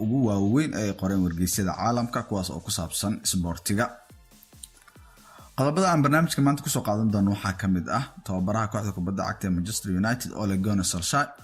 ugu waaweyn ee qoreen wargeysyada caalamka kuwaas oo ku saabsan sportiga. Qodobada aan barnaamijka maanta ku soo qaadan doono waxaa ka mid ah tababaraha kooxda kubadda cagta ee Manchester United Ole Gunnar Solskjaer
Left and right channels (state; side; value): identical; both; correlation 1.00